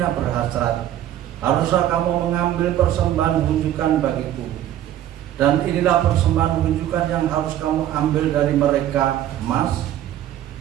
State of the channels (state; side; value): quieter; left; 12.0 dB